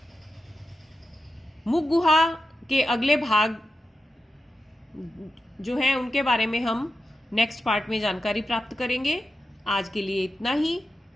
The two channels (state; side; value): normal; both; correlation 0.90